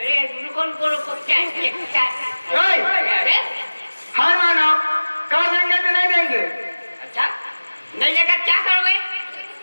रुको, क्या? ओए, अरे हर मानव कर देंगे तो नहीं देंगे? अच्छा, नहीं लेकर क्या करोगे?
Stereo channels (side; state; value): both; inverted; correlation -1.00